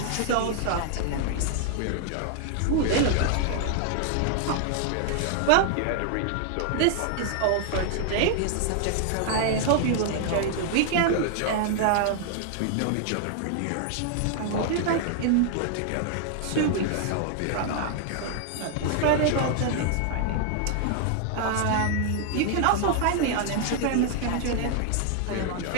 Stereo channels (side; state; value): both; different; correlation 0.00